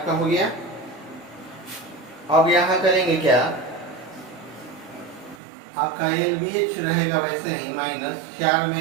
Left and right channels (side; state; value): left; drops out; at 5.4 s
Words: हो गया। अब यहाँ करेंगे क्या, आपका LBH रहेगा वैसे ही माइनस 4 में